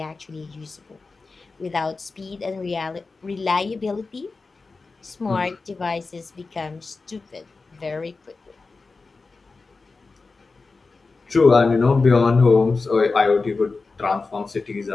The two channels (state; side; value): quieter; right; 4.0 dB